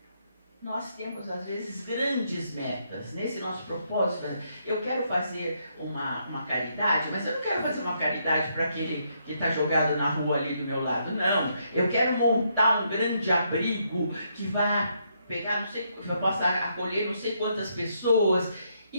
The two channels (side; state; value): both; inverted; correlation -0.75